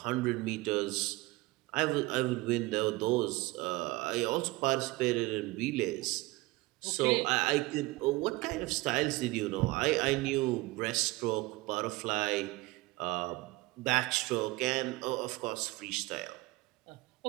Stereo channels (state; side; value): quieter; left; 21.3 dB